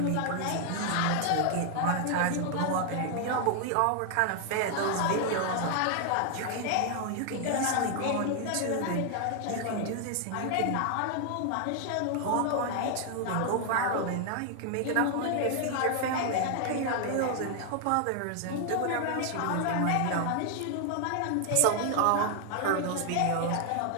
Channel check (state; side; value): different; both; correlation 0.00